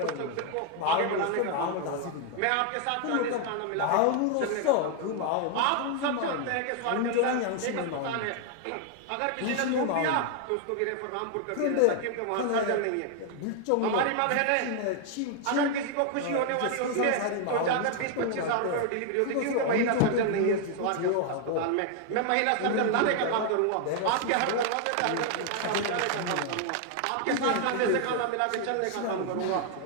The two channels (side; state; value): both; different; correlation 0.00